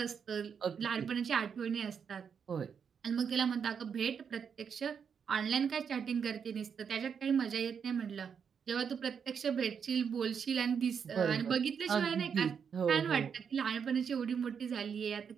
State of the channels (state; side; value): quieter; left; 6.9 dB